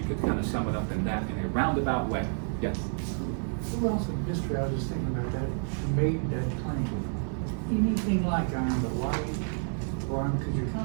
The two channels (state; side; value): silent; left; 55 dB below the other